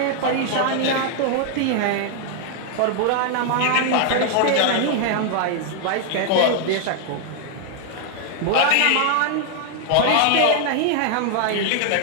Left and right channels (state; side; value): different; both; correlation 0.00